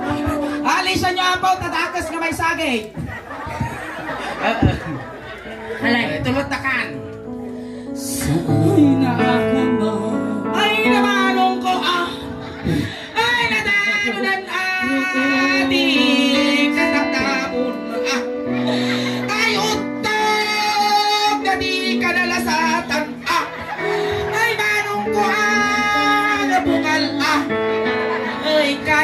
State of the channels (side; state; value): both; identical; correlation 1.00